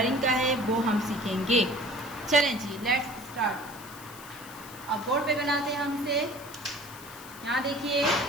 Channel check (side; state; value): left; noise; hiss, 17 dB below the sound